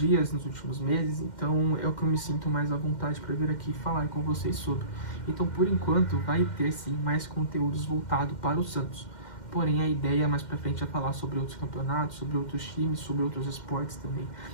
nos últimos meses. Então, é o que eu me sinto mais à vontade para vir aqui falar com vocês sobre. Então, por enquanto, vai ter, sim, mais conteúdos voltados para o Santos. Porém, a ideia mais pra frente é falar sobre outros campeonatos, sobre outros times, sobre outros esportes também.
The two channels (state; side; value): late; right; 2.1 ms